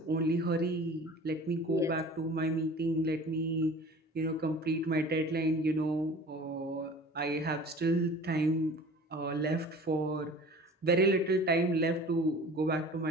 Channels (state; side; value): normal; both; correlation 0.43